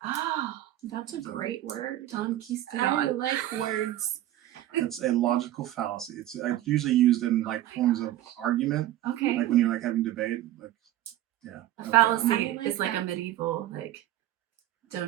Oh, That's a great word. Don I Quistadon. like words. It's a logical fallacy. It's usually used in like forms of argument, Okay. like when you're like having debate. Like, yeah. A Okay. fallacy I like is like a that. medieval, like,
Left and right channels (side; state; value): left; quieter; 13.9 dB